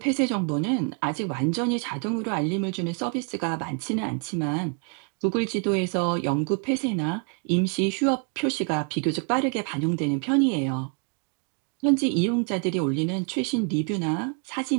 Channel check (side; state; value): left; quieter; 39.5 dB